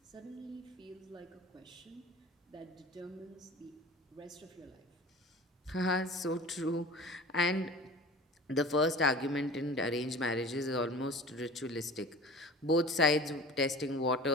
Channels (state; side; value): normal; both; correlation 0.39